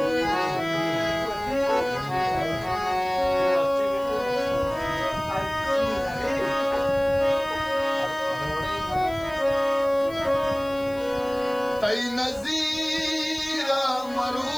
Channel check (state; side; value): noise; left; hiss, 23 dB below the sound